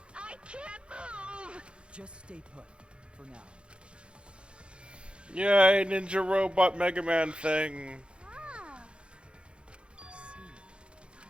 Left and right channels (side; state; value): left; late; 0.057 ms